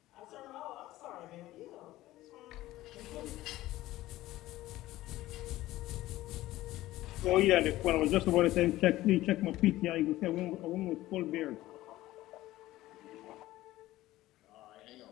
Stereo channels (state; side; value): quieter; right; 16.3 dB